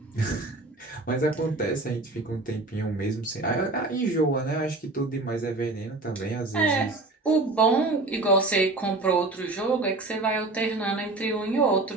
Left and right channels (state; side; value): quieter; left; 3.1 dB